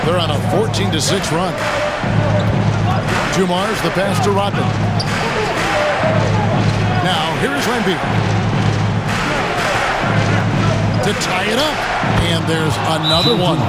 They're on a 14-6 run. Dumars, the pass to Rodman. Now, here's Lambier. To tie it up. And there's another one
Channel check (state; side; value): identical; both; correlation 1.00